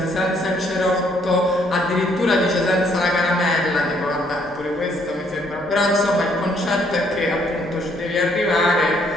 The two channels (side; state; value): both; normal; correlation 0.67